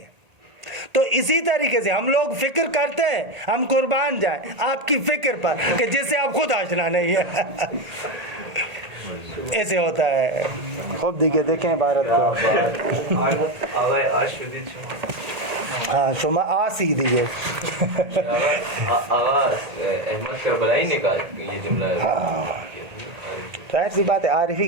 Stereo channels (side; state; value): left; late; 1.8 ms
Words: تو اسی طریقے سے ہم لوگ فکر کرتے ہیں ہم قربان جائیں آپ کی فکر پر کہ جس سے آپ خود آشنا نہیں ہے. ایسے ہوتا ہے. خوب دیکھیں بھارت کو. ہاں شما آسی دیئے. آغا احمد کربلائی نے کہا یہ جملہ ہے. ظاہر سی بات ہے عارف ہی